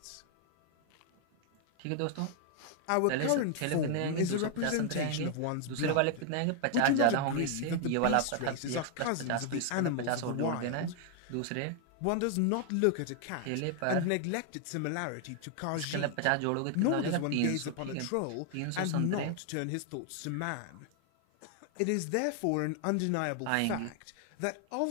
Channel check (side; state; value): both; different; correlation 0.00